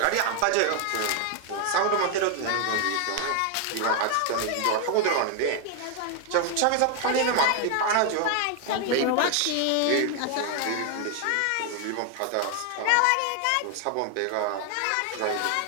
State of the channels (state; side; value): different; both; correlation 0.01